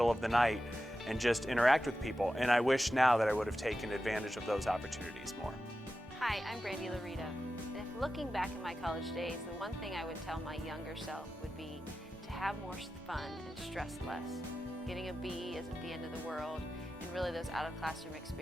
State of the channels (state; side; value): normal; both; correlation 0.92